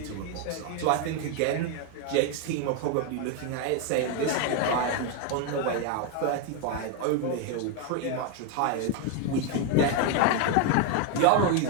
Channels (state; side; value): different; both; correlation 0.01